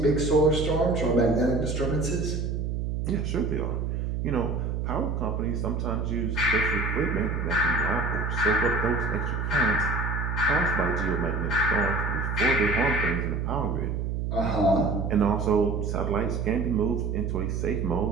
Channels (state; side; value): noise; right; hum, 1 dB below the sound